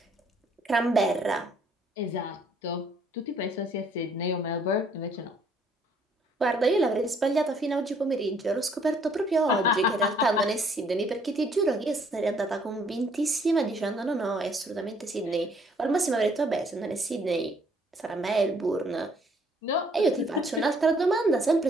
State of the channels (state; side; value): normal; both; correlation 0.64